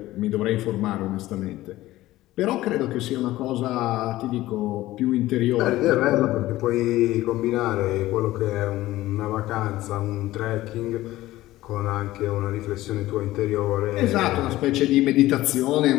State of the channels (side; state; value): right; quieter; 16.4 dB